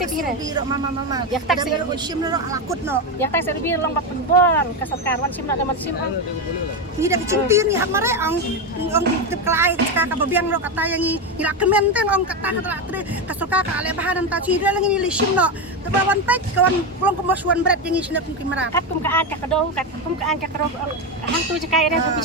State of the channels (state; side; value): normal; both; correlation 0.12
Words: mama ya tak sim no alakut no ya tak serbi long bak penbon kasarkarwan sim na daman sim ni dah kecimpir ni hak mare ong tip kelai ka babiang lo kata yang ni ila kementeng ong kata tre kasuka ka ale bahan ta ci lang ni sim no tabawan pek kawan long kemasuan berat yang sini pun kimara kat kum ka an ka kado kat kum ka an ka kado hang tu je kai ere